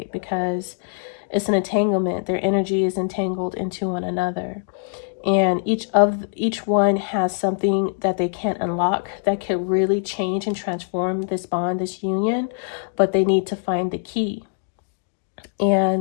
because it's an entanglement. Their energy is entangled into one another. And each one has something that they can't unlock that could really change and transform this bond, this union, but they need to find the key.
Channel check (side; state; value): right; silent; digital silence